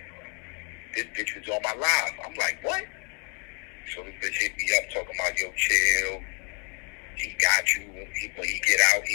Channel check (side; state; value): right; quieter; 34.2 dB